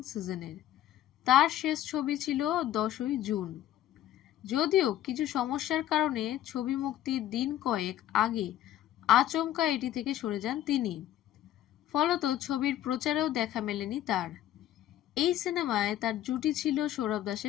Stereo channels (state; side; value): quieter; right; 12.5 dB